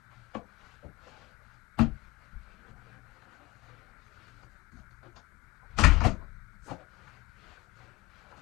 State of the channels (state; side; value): quieter; right; 21.0 dB